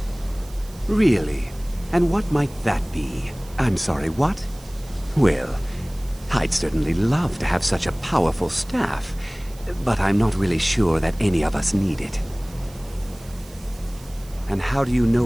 Really? And what might that be? I'm sorry, what? Well, I'd certainly love to have such a powerful staff, but I'm not really sure that any of us need it. And how do you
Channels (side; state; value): right; noise; hiss, 22 dB below the sound